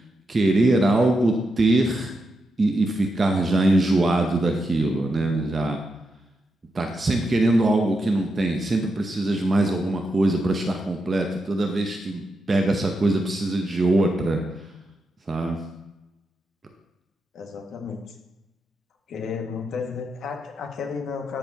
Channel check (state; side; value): normal; both; correlation 0.85